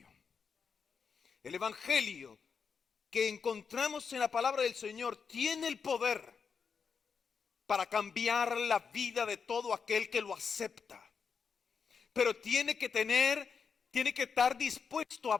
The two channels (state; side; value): quieter; right; 6.0 dB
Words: El Evangelio que encontramos en la palabra del Señor tiene el poder para cambiar la vida de todo aquel que lo acepta. Pero tiene que estar dispuesto